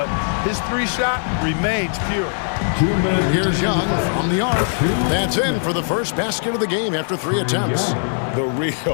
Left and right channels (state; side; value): silent; right; digital silence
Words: his 3-shot remains pure. Here's Young from the arc. That's in for the first basket of the game after 3 attempts. The